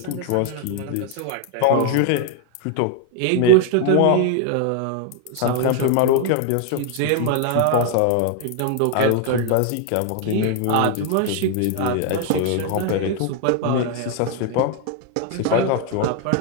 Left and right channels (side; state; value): both; different; correlation 0.00